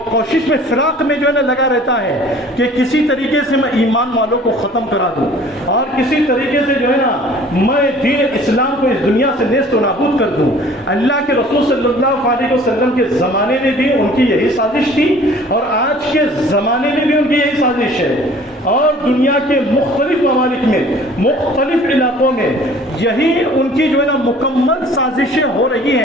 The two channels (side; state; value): both; normal; correlation 0.50